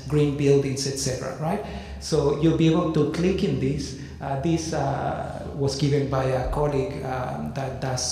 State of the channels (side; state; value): both; identical; correlation 1.00